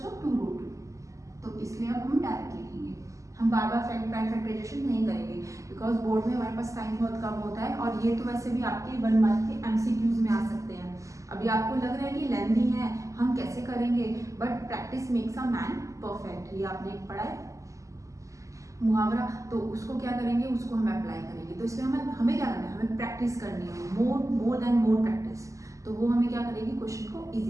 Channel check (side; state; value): left; late; 0.16 ms